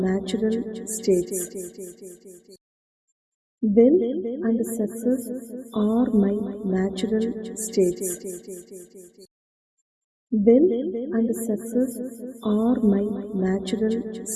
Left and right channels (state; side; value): identical; both; correlation 1.00